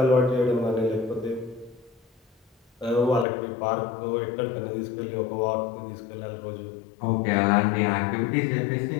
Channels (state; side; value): drops out; right; at 3.2 s